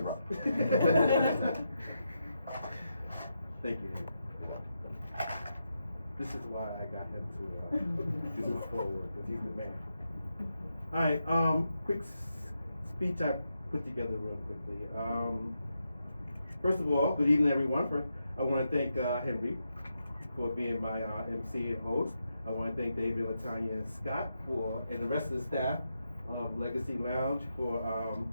Thank you. This is why I got him to do my foreword, because he's the man. All right, quick speech I put together real quickly. First of all, good evening, everyone. First, I want to thank Henry for being my MC and host. I want to thank David, Latanya, and Scott and the rest of the staff of Legacy Lounge for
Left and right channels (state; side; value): inverted; both; correlation -0.85